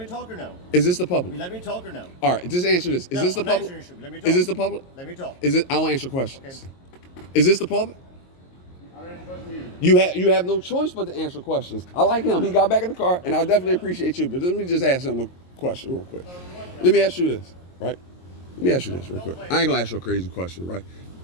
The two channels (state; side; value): late; right; 22 ms